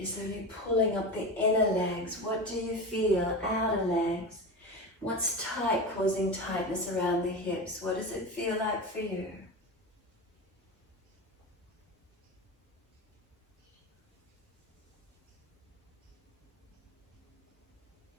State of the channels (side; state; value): both; normal; correlation 0.25